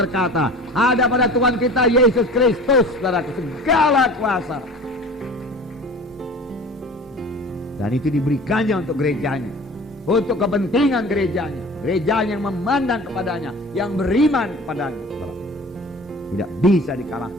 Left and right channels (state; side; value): normal; both; correlation 0.41